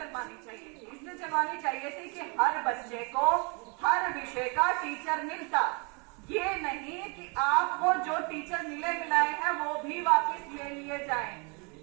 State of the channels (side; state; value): left; quieter; 32.8 dB